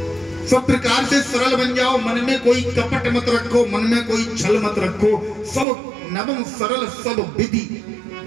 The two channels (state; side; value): drops out; left; at 5.7 s